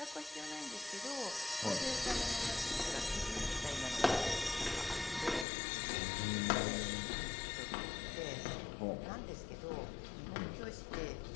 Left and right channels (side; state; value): right; drops out; at 5.5 s